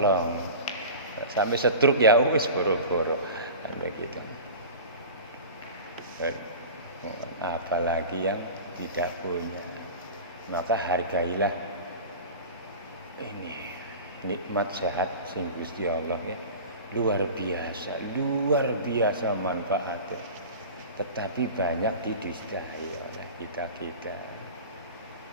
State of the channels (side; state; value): both; inverted; correlation -0.35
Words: sampai stroke ya wis boro-boro begitu. Apalagi yang tidak punya, maka hargailah ini nikmat sehat sing Gusti Allah ya. Luar biasa manfaatnya. Tetapi banyak didustai oleh kita.